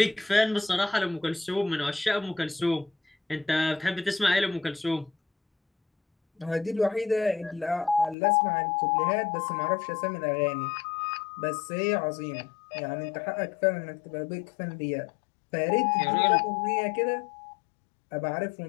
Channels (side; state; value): right; drops out; at 8.2 s